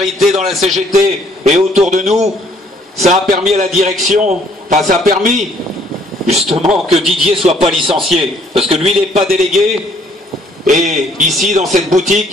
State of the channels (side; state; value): both; normal; correlation 0.63